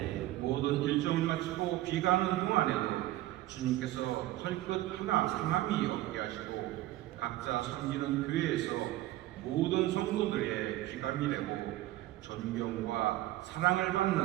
모든 일정을 마치고 귀가하는 동안에도 주님께서 털끝 하나 상함이 없게 하시고 각자 섬기는 교회에서 모든 성도들의 귀감이 되고 존경과 사랑을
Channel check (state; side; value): quieter; left; 15.9 dB